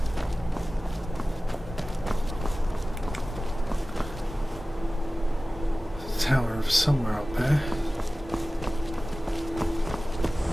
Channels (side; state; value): both; normal; correlation 0.97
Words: Tower of somewhere up there.